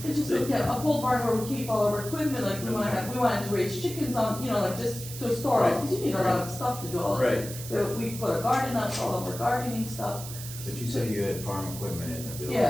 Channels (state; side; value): noise; right; hiss, 11 dB below the sound